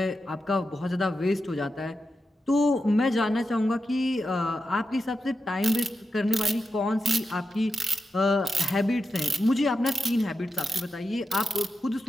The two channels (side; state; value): both; normal; correlation 0.89